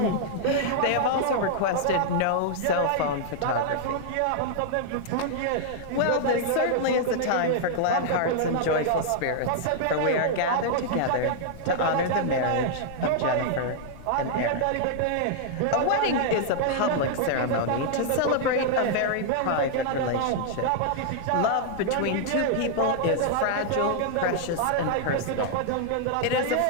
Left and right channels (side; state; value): both; different; correlation -0.01